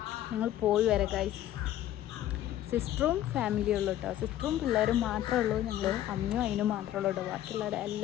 ഞങ്ങൾ പോയി വരാം ഗായ്സ്. സിസ്റ്ററും ഫാമിലിയും ഉള്ളൂ കേട്ടോ. സിസ്റ്ററും പിള്ളേരും മാത്രമേ ഉള്ളൂ. ഞങ്ങൾ അമ്മയും അതിനും മാത്രമേ ഉള്ളൂ കേട്ടോ. ബാക്കിയുള്ളവർ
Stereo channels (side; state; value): right; quieter; 12.7 dB